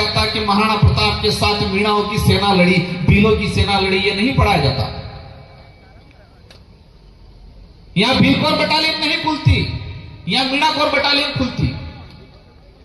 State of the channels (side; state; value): both; identical; correlation 1.00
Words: कि महाराणा प्रताप के साथ मीणाओं की सेना लड़ी, भीलों की सेना लड़ी, यह नहीं पढ़ाया जाता। यहां भीलकोर बटालियन नहीं खुलती, यहां मीणाकोर बटालियन खुलती।